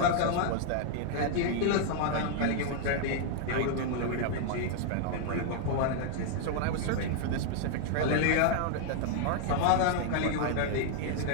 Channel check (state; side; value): different; both; correlation 0.00